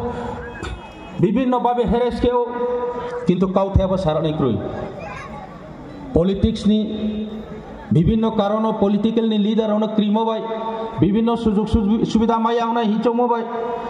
বিভিন্নভাবে হেরেস খেও কিন্তু কাউথেব সারানি ক্রুই পলিটিক্স নি বিভিন্ন কারণ পলিটিক্যাল নি লিডার অনেক ক্রিমো বাই বিভিন্ন সুযোগ সুবিধা মাইয়া অনেক হিচমো বাই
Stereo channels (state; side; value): identical; both; correlation 1.00